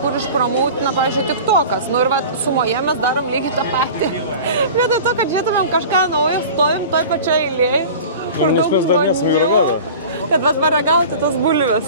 kur išpramautina, pavyzdžiui, TikTokas. Nu ir sumoje mes darom lygiai tą patį. Vietoj to, kad žiūrėtumėm kažką naujo, stovim toj pačioj eilėje. Nes mes dar nesame ragavę. Bet paragauti tas bulves.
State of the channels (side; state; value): both; inverted; correlation -0.38